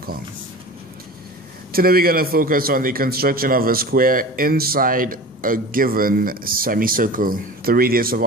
Today we're going to focus on the construction of a square inside a given semicircle. The radius of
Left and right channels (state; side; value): normal; both; correlation 0.35